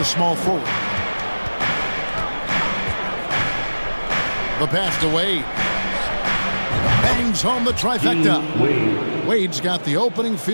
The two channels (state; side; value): inverted; both; correlation -1.00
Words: small forward. The pass to Wade. Bangs home the trifecta. Wade's got the opening